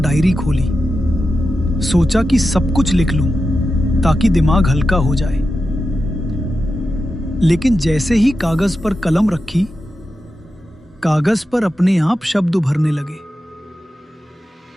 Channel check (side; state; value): both; normal; correlation 0.90